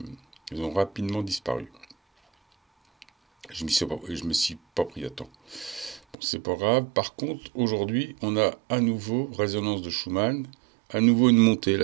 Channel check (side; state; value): left; drops out; at 6.2 s